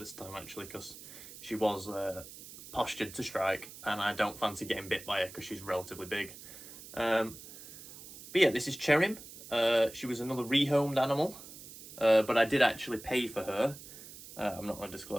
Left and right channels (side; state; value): right; noise; hiss, 15 dB below the sound